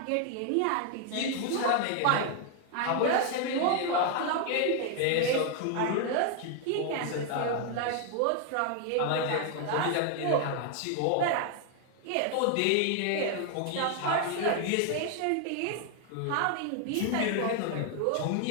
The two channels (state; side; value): different; both; correlation 0.00